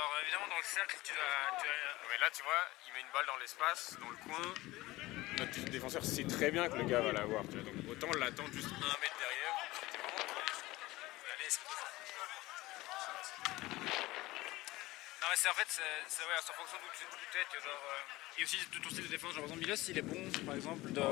évidemment, dans le cercle, tu vas. Mais là, tu vois, il met une balle dans l'espace, dans le coin. Notre défenseur sait très bien que le gars va l'avoir. Tu vois, donc autant l'attendre juste 1 mètre derrière. C'était vraiment cool. Allez, c'est bon. Non, mais c'est en fait, c'est ouais, en fonction d'où tu es, que genre. Et aussi de ton style de défense. Genre, par exemple, Milos, il est bon, par exemple.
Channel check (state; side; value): quieter; right; 19.0 dB